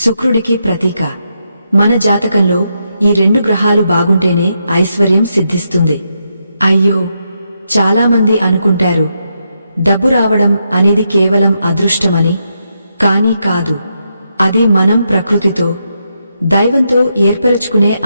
ప్రతీక. మన జాతకంలో ఈ 2 గ్రహాలు బాగుంటేనే ఐశ్వర్యం సిద్ధిస్తుంది. అయ్యో, చాలామంది అనుకుంటారు డబ్బు రావడం అనేది కేవలం అదృష్టమని. కానీ కాదు. అది మనం ప్రకృతితో, దైవంతో ఏర్పరచుకునే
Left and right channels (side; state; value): both; inverted; correlation -0.82